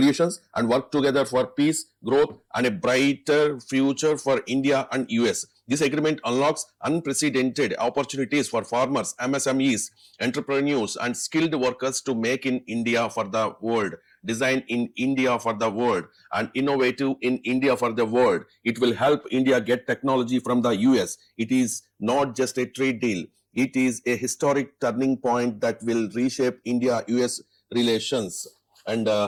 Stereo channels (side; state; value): both; identical; correlation 1.00